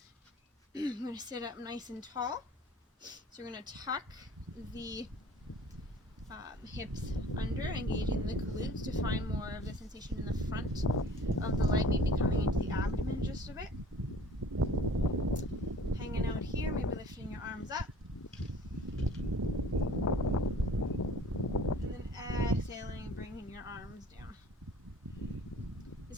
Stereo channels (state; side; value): normal; both; correlation 0.48